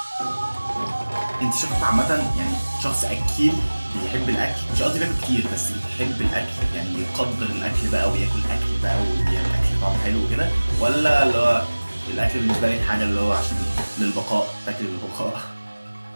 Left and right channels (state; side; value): inverted; both; correlation -1.00